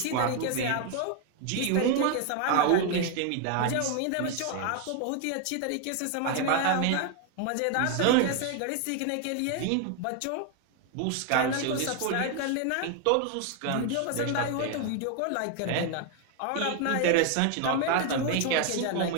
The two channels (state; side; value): different; both; correlation 0.01